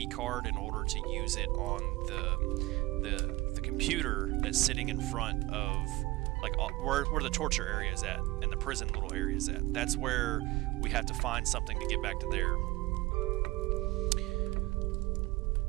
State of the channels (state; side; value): quieter; left; 20.3 dB